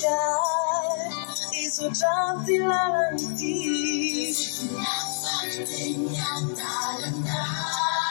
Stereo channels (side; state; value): right; silent; digital silence